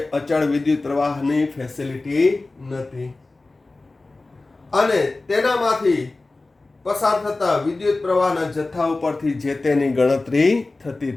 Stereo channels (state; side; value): quieter; right; 3.3 dB